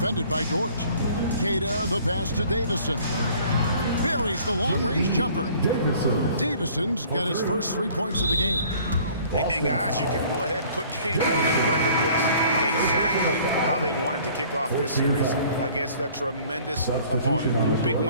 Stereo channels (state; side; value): inverted; both; correlation -0.53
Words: by Dort. Queta, the pass to Davison. Buries the long-range jumper. Davison's got his first 3 points of the game. And guys, you can go ahead and put game one in the record books. Exactly how they wanted to kick off this series against a tremendous opponent. Big